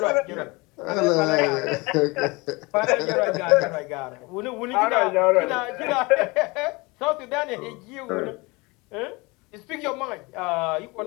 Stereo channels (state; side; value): quieter; right; 25.2 dB